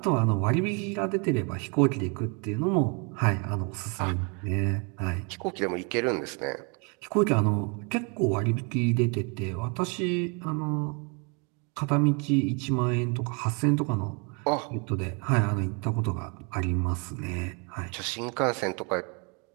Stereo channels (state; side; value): quieter; left; 34.0 dB